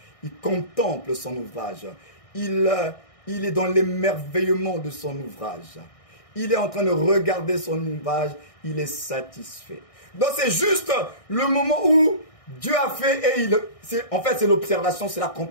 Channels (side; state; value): right; late; 1.6 ms